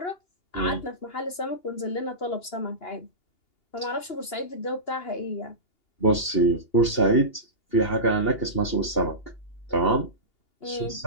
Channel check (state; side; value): late; right; 2.8 ms